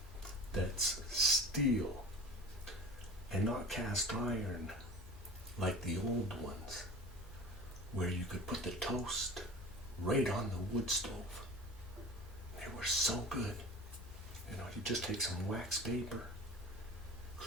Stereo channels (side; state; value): both; normal; correlation 0.37